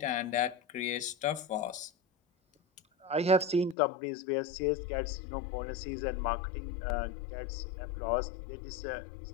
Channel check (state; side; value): drops out; right; at 3.8 s